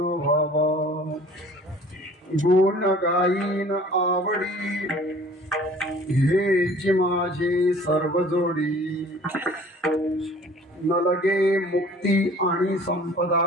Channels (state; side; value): normal; both; correlation 0.49